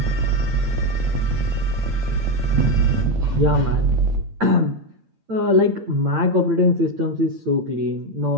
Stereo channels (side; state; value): left; late; 8.8 ms